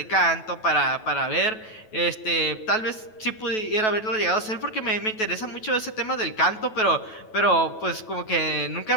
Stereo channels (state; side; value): late; right; 9.2 ms